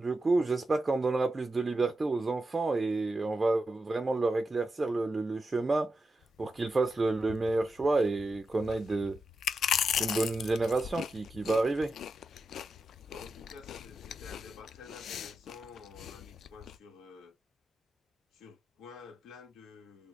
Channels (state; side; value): normal; both; correlation 0.88